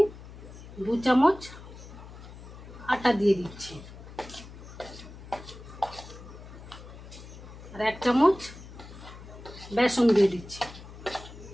2 চামচ আটা দিয়ে দিচ্ছি, আর 1 চামচ বেসন দিয়ে দিচ্ছি।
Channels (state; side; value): noise; left; hum, 15 dB below the sound